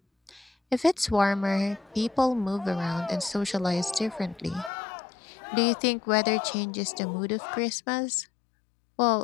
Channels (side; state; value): right; drops out; at 4.7 s